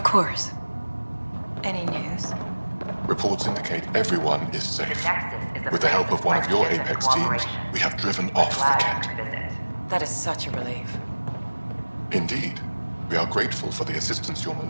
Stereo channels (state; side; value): inverted; both; correlation -1.00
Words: course. Any news? Reports indicate everyone is safe. Nexus is a With the place help of one of your friendship and Apex teams, cooperation. we have driven off the Glad you Kent. could visit. That is such a relief. Indeed. We are grateful for the assistance your